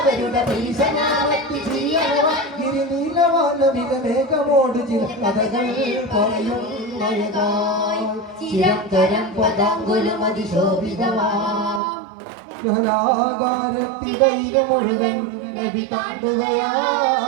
ഭീഷണാവത്തി ചെയ്യണവാൻ ഗിരിനീലവാനമികമേഘമോട് ചില കഥകൾ പറയും ചിരന്തരം പദാങ്കുലം അതിശോഭിതവാകാരത്തിടയിലെ മുഴുവൻ നബി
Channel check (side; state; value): left; drops out; at 11.8 s